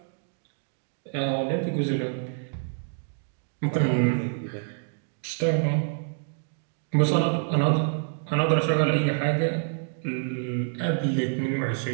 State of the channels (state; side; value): silent; left; digital silence